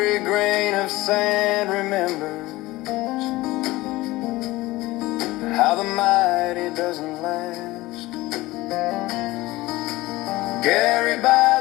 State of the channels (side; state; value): right; quieter; 19.2 dB